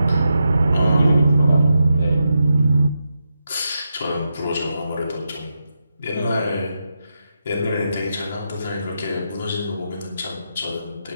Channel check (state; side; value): inverted; both; correlation -0.86